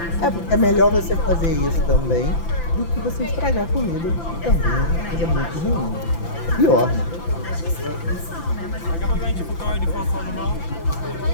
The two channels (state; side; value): late; right; 5.9 ms